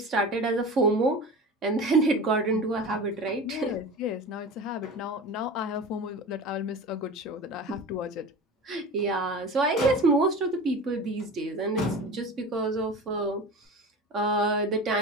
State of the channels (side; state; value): both; normal; correlation 0.32